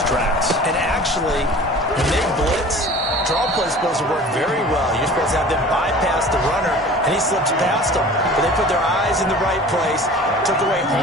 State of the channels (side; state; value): both; normal; correlation 0.43